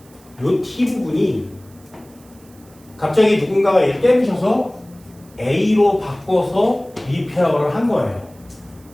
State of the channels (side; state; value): right; noise; hiss, 28 dB below the sound